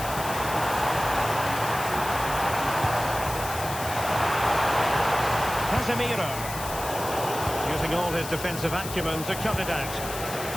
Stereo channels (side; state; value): left; noise; hiss, 9 dB below the sound